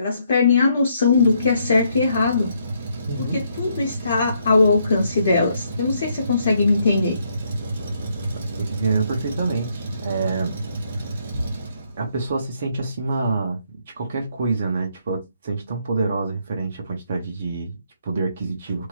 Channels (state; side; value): inverted; both; correlation -0.72